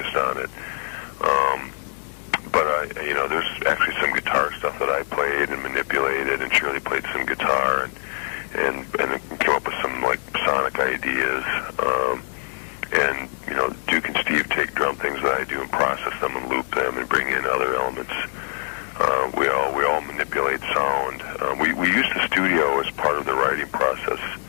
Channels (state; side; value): silent; right; digital silence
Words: on it. But there's actually some guitar stuff that I played and manipulated, and Shirley played some guitar and came up with some sonic ideas. And Duke and Steve take drum things that I do and process them and loop them and bring in other elements. We all manipulate sound. We use the studio as part of the writing process.